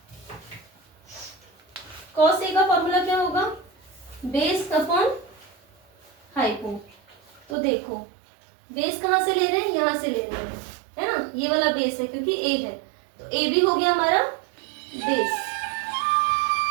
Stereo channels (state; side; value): drops out; left; at 7.6 s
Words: कॉस A का फॉर्मूला क्या होगा, बेस अपॉन हाइपो। तो देखो बेस कहाँ से ले रहे हैं, यहाँ से ले रहे हैं, है ना। ये वाला बेस है क्योंकि A है, तो A भी हो गया हमारा बेस।